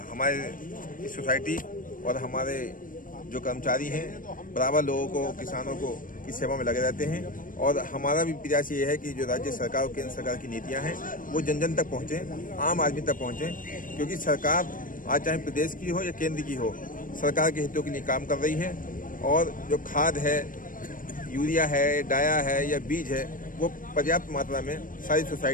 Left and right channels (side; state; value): right; late; 0.40 ms